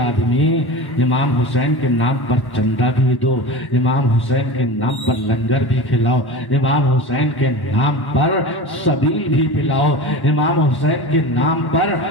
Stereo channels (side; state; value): right; late; 1.1 ms